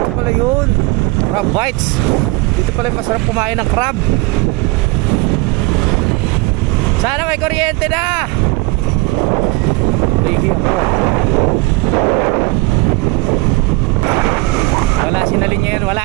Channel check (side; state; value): left; quieter; 23.4 dB